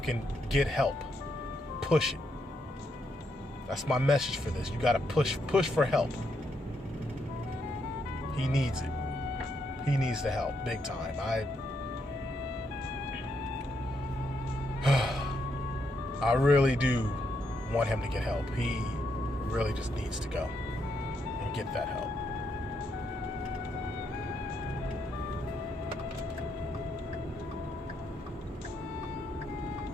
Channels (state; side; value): normal; both; correlation 0.78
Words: get help. Push it. That's my message for this. You gotta push for help. He needs it. He needs the help, big time. I really do want him to get help. He really just needs to go and get that help.